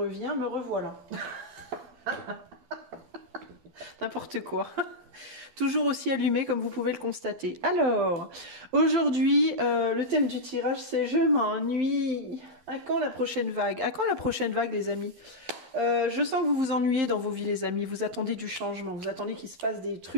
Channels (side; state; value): left; late; 12 ms